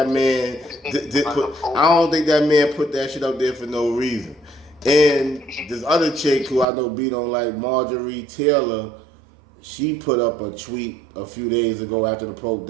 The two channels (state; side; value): drops out; left; at 6.7 s